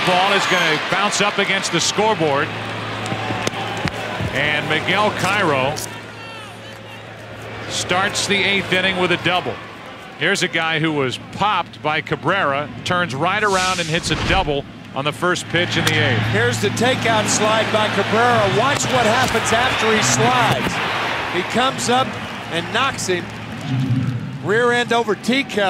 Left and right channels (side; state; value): both; identical; correlation 1.00